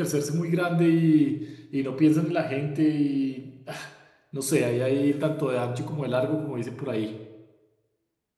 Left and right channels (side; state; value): both; identical; correlation 1.00